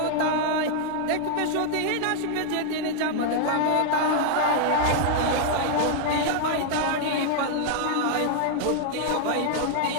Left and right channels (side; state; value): both; different; correlation -0.01